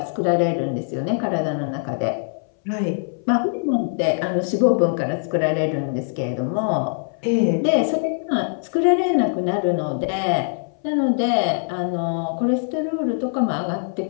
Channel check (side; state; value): right; silent; 60 dB below the other